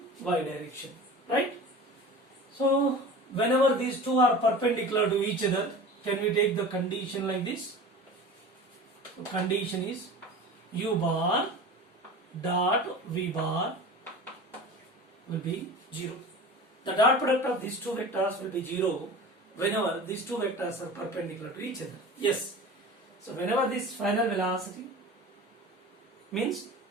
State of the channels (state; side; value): normal; both; correlation 0.36